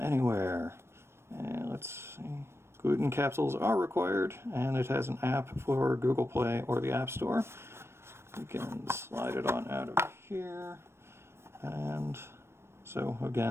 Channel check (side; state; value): left; late; 0.12 ms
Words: anywhere. And let's see, gluten capsules are required, and it has an app for Google Play or the App Store. We can slide it on out of here, and so